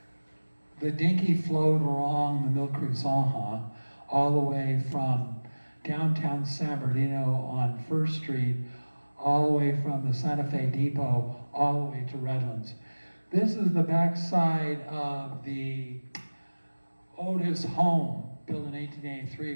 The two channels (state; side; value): inverted; both; correlation -1.00